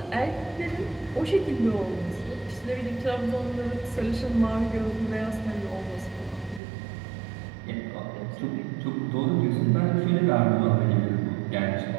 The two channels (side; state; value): left; drops out; at 6.6 s